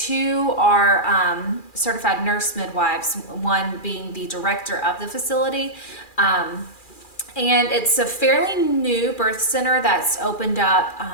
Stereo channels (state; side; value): late; right; 2.4 ms